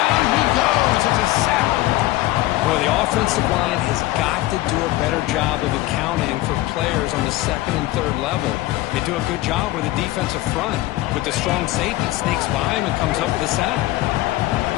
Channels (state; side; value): quieter; right; 17.1 dB